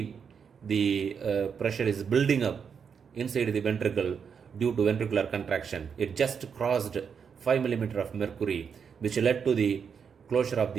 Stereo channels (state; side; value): quieter; left; 6.7 dB